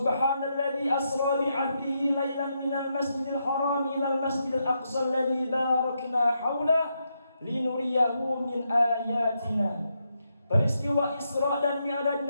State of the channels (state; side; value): inverted; both; correlation -0.82